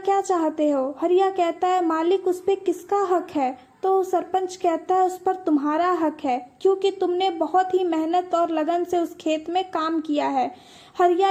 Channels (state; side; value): identical; both; correlation 1.00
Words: चाहते हो? हरिया कहता है, मालिक उस पे किसका हक है? तो सरपंच कहता है, उस पर तुम्हारा हक है, क्योंकि तुमने बहुत ही मेहनत और लगन से उस खेत में काम किया है। हरिया